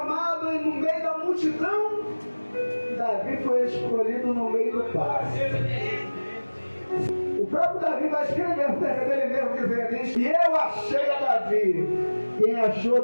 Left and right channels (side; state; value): both; inverted; correlation -1.00